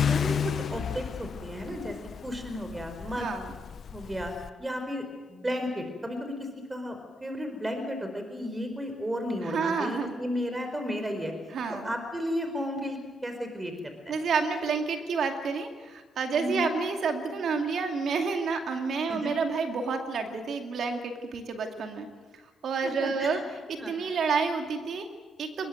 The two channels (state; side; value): normal; both; correlation 0.76